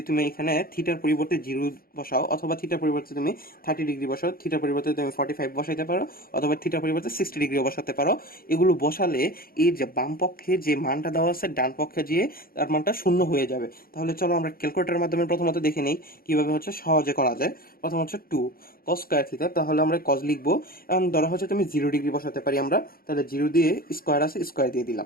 তুমি এখানে থিটার পরিবর্তে 0 বসাও, অথবা থিটার পরিবর্তে তুমি 30 ডিগ্রি বসাও, থিটার পরিবর্তে তুমি 45 বসাইতে পারো, অথবা থিটার পরিবর্তে 60 ডিগ্রিও বসাতে পারো। এগুলো বসালে এই যে বাম পক্ষে যে মানটা দেওয়া আছে ডান পক্ষে গিয়ে তার মানটা শূন্য হয়ে যাবে। তাহলে চলো আমরা ক্যালকুলেটরের মাধ্যমে প্রথমত দেখে নেই কিভাবে হচ্ছে সহজে করা যায়। প্রথম হচ্ছে 2 cos² থিটা, তাহলে আমরা কজ লিখবো। এখন ধরা হচ্ছে তুমি 0 ডিগ্রি বসাতে পারি আমরা, তাহলে 0 দিয়ে স্কোয়ার আছে, স্কোয়ার দিয়ে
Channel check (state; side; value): late; right; 0.43 ms